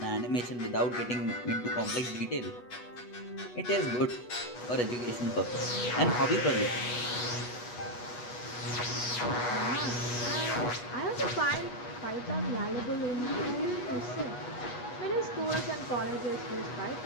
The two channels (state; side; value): late; right; 8.2 ms